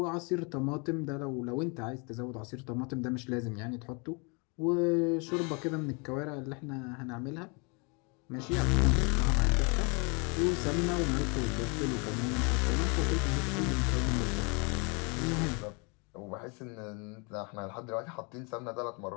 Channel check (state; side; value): quieter; right; 32.5 dB